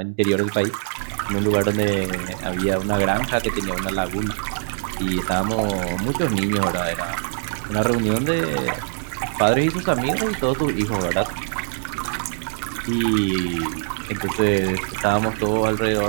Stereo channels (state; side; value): silent; left; 64 dB below the other